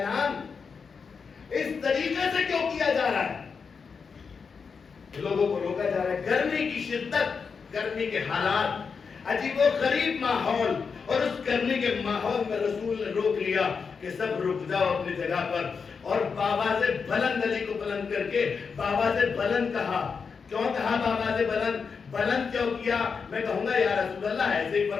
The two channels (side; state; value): right; quieter; 5.6 dB